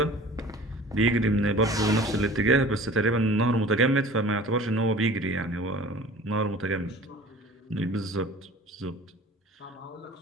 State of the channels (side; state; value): both; normal; correlation 0.44